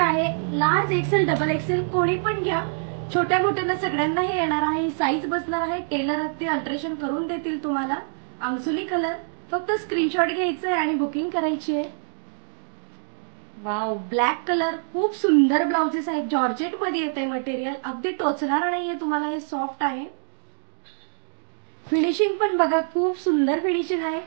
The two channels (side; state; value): left; silent; digital silence